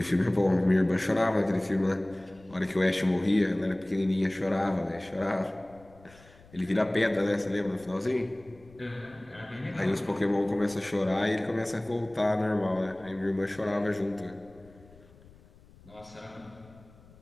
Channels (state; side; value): noise; left; rumble, 25 dB below the sound